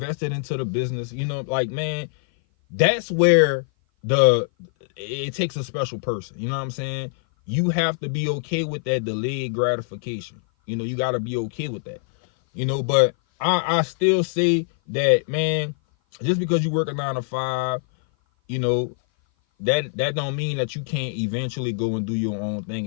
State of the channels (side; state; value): right; silent; 57 dB below the other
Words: it into the business. Like, man, that's where it takes a special person. You know what I'm saying? You have to be okay with that delayed gratification. You got to be okay with that. you know. But I still say that, man, just because you work a 9 to 5, you know, that don't mean that you can't eventually go and do your own thing